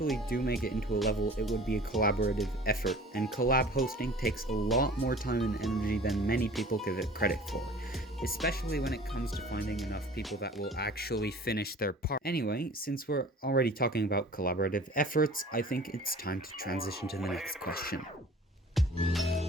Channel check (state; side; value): normal; both; correlation 0.45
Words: do make it into a level, it would be a collaborative effort, and collab hosting takes a lot more time and energy than many people give it credit for, especially when it comes to finding enough people that will actually finish their part. Anyway, since we're already talking about collaborative efforts, I think it's time to transition to the next question.